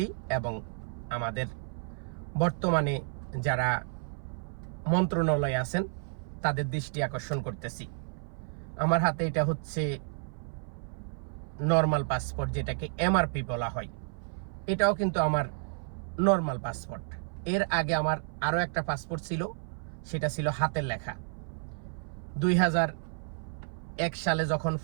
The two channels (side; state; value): left; silent; 57 dB below the other